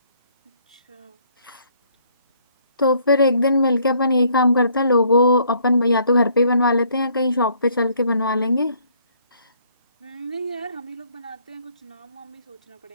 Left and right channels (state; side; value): inverted; both; correlation -0.64